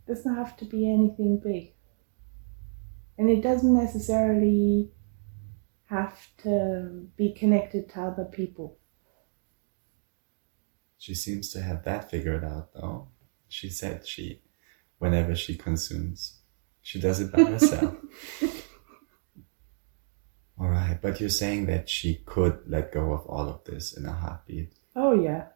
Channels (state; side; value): silent; left; digital silence